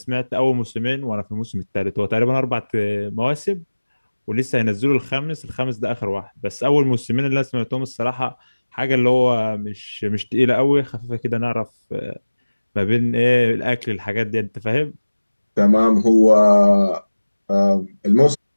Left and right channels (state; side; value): inverted; both; correlation -1.00